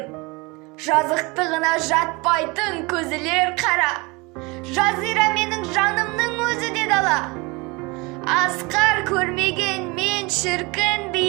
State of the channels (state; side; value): quieter; left; 26.2 dB